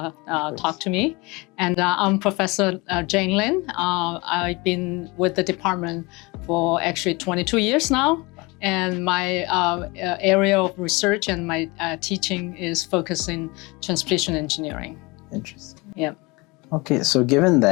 talk to me. And I'm Professor Jane Lin. I've been with the department for actually 22 years now. And my area of research and my teaching is focused in transportation engineering. Interesting. Yeah. Okay, so given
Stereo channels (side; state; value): right; quieter; 25.4 dB